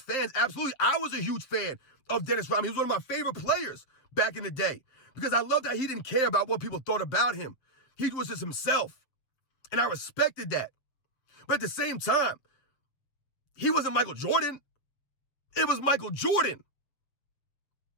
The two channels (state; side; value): late; right; 7.6 ms